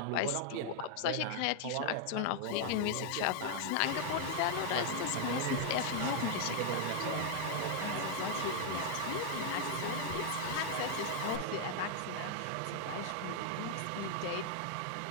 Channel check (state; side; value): different; both; correlation 0.00